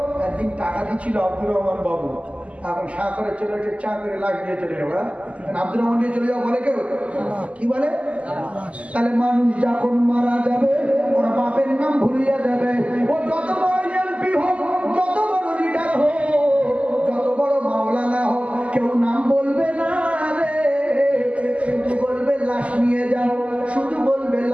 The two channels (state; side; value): late; left; 0.064 ms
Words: একদিন টাকা দিচ্ছিল আব্দুর রহমান বাবু, এখন চা করে চলে এসে চা করে লাখ দিয়ে চলে যাবো। আব্দুর রহমান দিয়ে চলে যাও বলে কেউ? কি বলে? তাহলে মানুষ যখন মারা যাবে, ওরা বাপের নাম ভুলিয়ে যাবে। ও যত বড় এমপি হোক, যত বড় লিডার হোক, যত বড় মাওলানা হোক, কেউ নাম বলবে না রে, শুধু বলবে লাশ নিয়ে যাও, শুধু বলবে